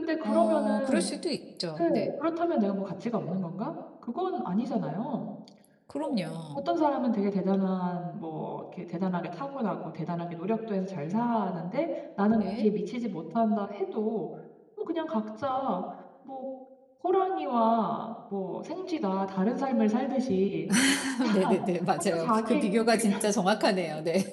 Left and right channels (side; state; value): both; identical; correlation 1.00